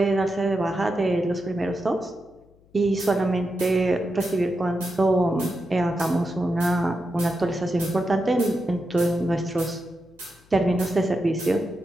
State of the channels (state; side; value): noise; left; hum, 30 dB below the sound